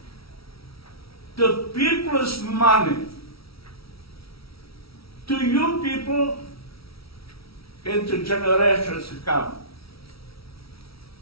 The people's money. To you people and to generations to come.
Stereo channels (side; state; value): right; late; 0.75 ms